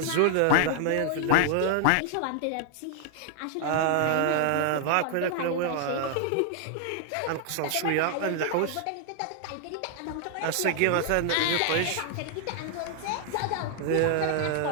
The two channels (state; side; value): different; both; correlation 0.00